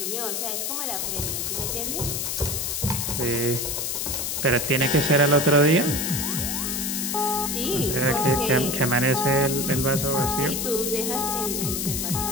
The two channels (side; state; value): left; noise; hiss, 1 dB below the sound